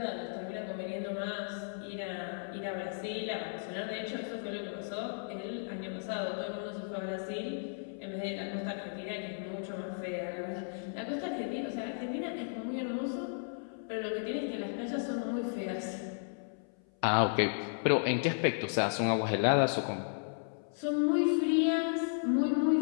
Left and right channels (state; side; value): silent; right; 55 dB below the other